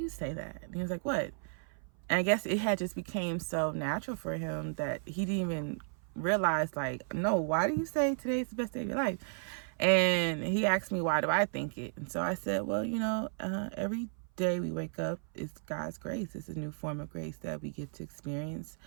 say that?" And he was like, "What?" And I guess it had just became so natural for him that he didn't even realize, like, no, why do you say today's the best day of your life? And he asked me, why do I think it? And so I said, well, every day we wake up, it's God's grace. It's a new form of grace that we get to experience.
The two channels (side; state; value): left; silent; 55 dB below the other